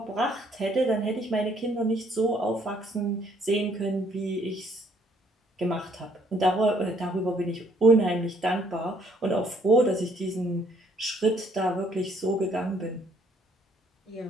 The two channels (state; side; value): normal; both; correlation 0.65